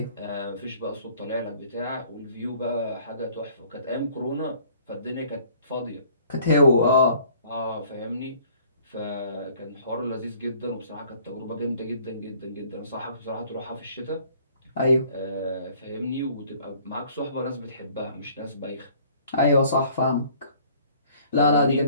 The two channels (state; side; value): inverted; both; correlation -0.56